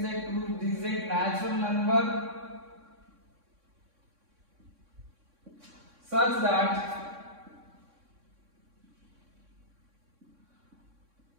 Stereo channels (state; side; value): late; left; 3.6 ms